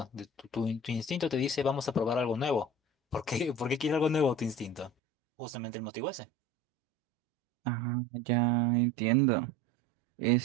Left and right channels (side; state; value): left; drops out; at 4.9 s